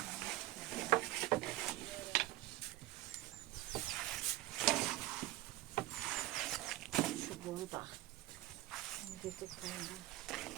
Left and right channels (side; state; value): left; quieter; 17.2 dB